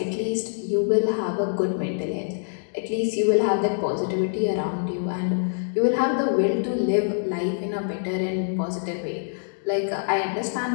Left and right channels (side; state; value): right; silent; digital silence